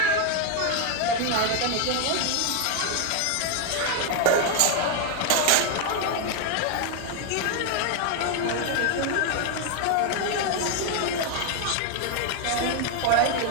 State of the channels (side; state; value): both; different; correlation 0.01